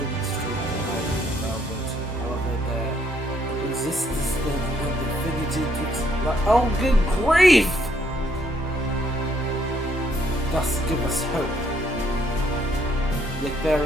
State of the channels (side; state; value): both; normal; correlation 0.69